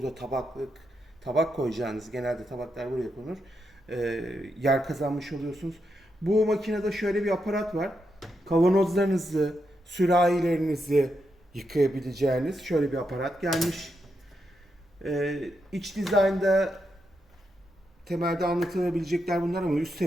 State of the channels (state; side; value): normal; both; correlation 0.83